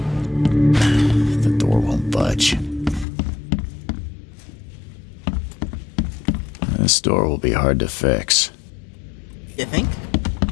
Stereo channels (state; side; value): drops out; right; at 3.1 s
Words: The door won't budge. This door will be hard to fix. You think?